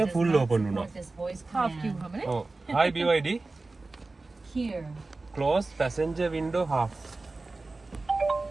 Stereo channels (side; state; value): left; quieter; 3.4 dB